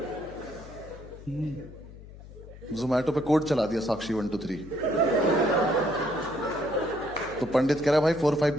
जोमैटो पे कोड चला दिया साक्षी 1 2 3। तो पंडित कह रहा है भाई 4 5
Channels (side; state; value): left; noise; hum, 17 dB below the sound